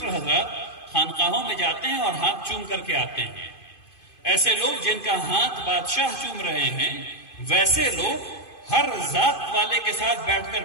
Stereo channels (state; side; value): late; right; 2.5 ms